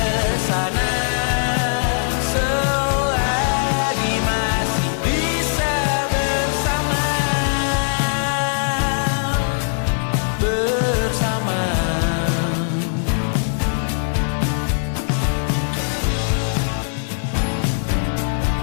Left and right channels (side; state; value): right; silent; digital silence